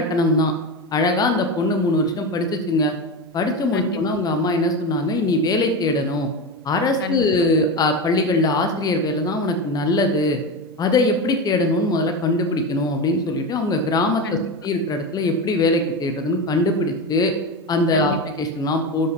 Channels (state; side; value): normal; both; correlation 0.20